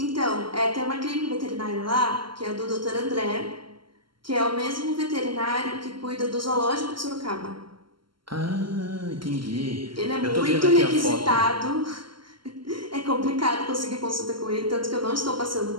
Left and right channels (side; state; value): left; late; 0.73 ms